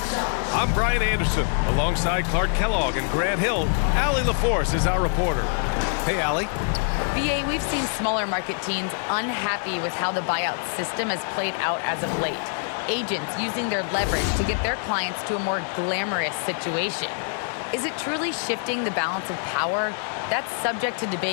I'm Brian Anderson, alongside Clark Kellogg and Grant Hill. Allie LaForce is our reporter. Hey, Allie. BA, we've seen smaller market teams unhappy with how the buyout system has played out as of late. Agents using their leverage to get their clients to a more glamorous situation. Is it truly shifting the balance of power? That's subject to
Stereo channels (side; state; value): right; silent; 62 dB below the other